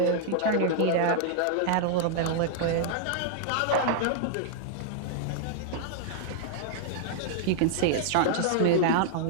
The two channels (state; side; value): different; both; correlation -0.01